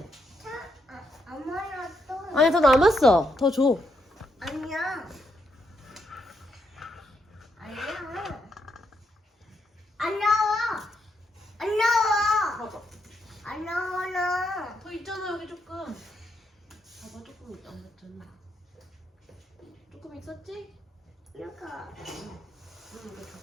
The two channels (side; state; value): both; normal; correlation 0.79